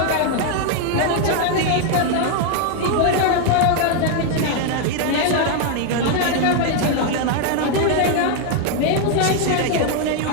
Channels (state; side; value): different; both; correlation 0.00